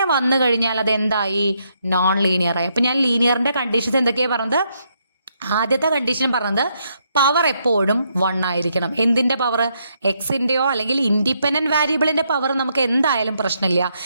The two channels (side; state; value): both; inverted; correlation -0.76